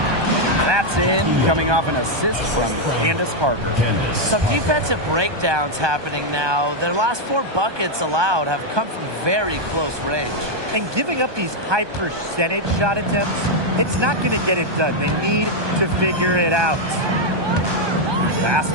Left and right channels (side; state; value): left; late; 1.2 ms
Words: That's in, coming off an assist from Candace Parker. Some defensive breakdowns happening now. Their last 4 buckets allowed have come from very close range. And giving up these high percentage shot attempts, it's not going to get it done. They need to figure it out. Pass